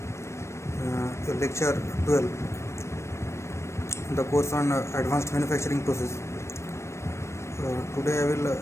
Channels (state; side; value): late; right; 0.13 ms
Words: lecture 12, the course on advanced manufacturing process. Today I will